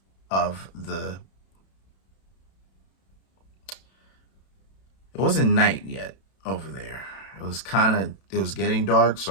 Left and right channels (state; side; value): late; right; 31 ms